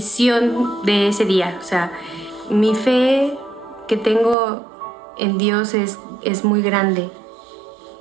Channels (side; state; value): left; drops out; at 4.4 s